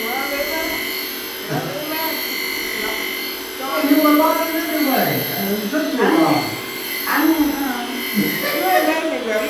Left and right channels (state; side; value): identical; both; correlation 1.00